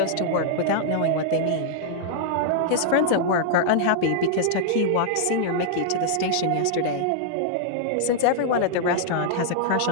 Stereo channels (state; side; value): different; both; correlation -0.01